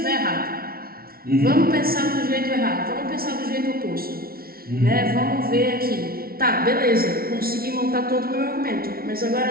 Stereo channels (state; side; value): late; left; 0.44 ms